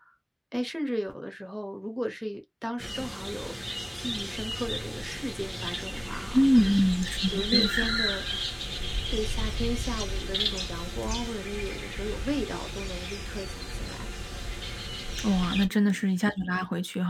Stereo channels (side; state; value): both; identical; correlation 1.00